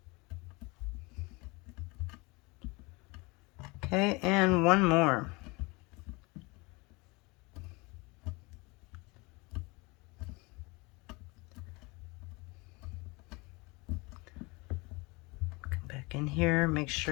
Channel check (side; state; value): right; quieter; 26.1 dB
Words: Okay, and one more. Come back in here, make